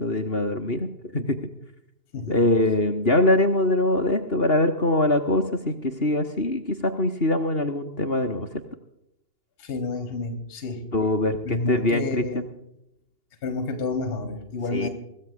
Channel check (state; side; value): late; right; 2.8 ms